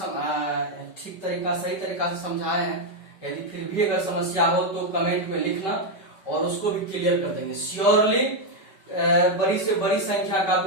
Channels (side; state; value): right; late; 5.1 ms